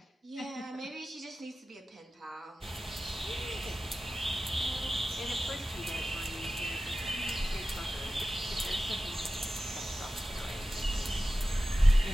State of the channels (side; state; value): both; normal; correlation 0.94